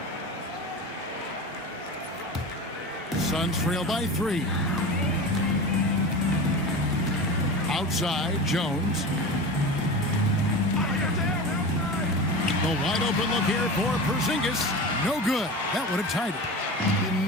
Suns trail by 3. Outside, Jones. The wide open look here for Porzingis. No good. That would have tied it. You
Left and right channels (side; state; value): both; normal; correlation 0.30